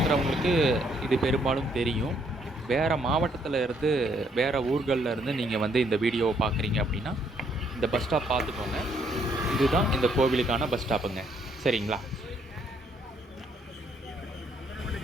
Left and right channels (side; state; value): both; normal; correlation 0.69